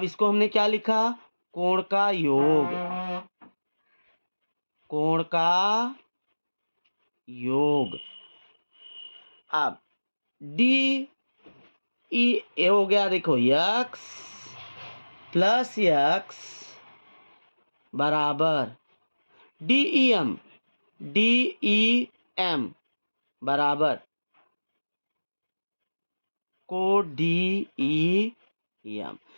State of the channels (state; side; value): inverted; both; correlation -1.00